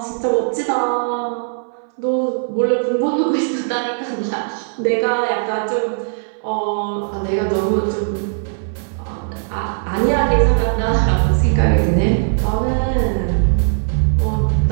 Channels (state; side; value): silent; left; 61 dB below the other